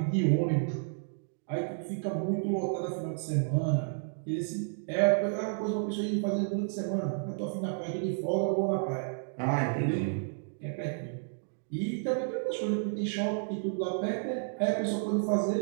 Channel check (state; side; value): silent; left; digital silence